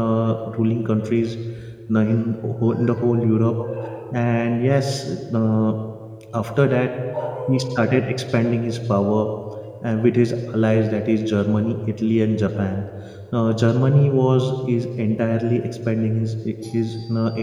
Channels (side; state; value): both; identical; correlation 1.00